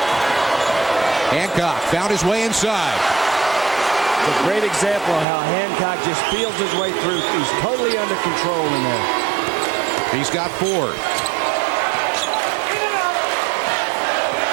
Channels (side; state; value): left; drops out; at 5.2 s